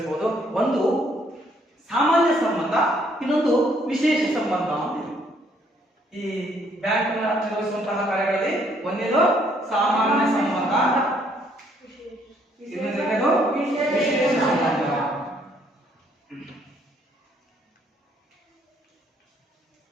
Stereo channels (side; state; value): both; normal; correlation 0.67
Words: ಒಂದು ಸಾಮಾನ್ಯ ಸಂಬಂಧ, ಇನ್ನೊಂದು ವಿಶೇಷ ಸಂಬಂಧ ಅಂತ ಇದೆ. ಈ ಬ್ಯಾಂಕ್ ನಿರ್ವಹಿಸುವಂತಹ ಕಾರ್ಯಗಳಲ್ಲಿ ಒಂದೇದು ಸಾಮಾನ್ಯ ಸಂಬಂಧ, ಇನ್ನೊಂದು ವಿಶೇಷ ಸಂಬಂಧ.